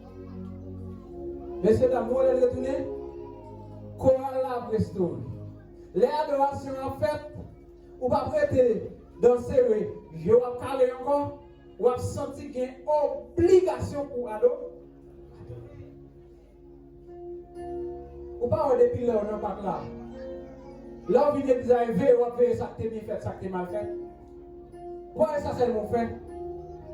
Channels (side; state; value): both; identical; correlation 1.00